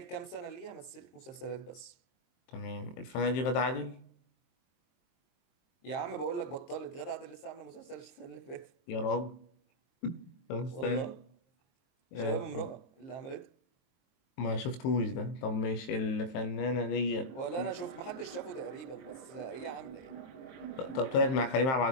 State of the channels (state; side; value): late; right; 23 ms